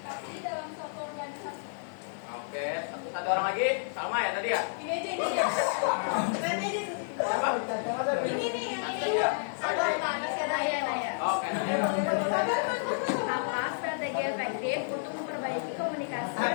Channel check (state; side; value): silent; right; 57 dB below the other